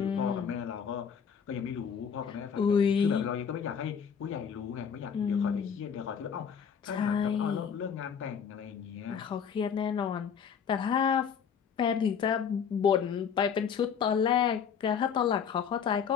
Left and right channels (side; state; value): right; quieter; 7.2 dB